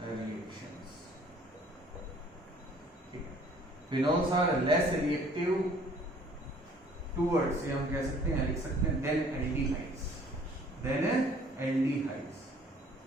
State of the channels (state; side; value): normal; both; correlation 0.56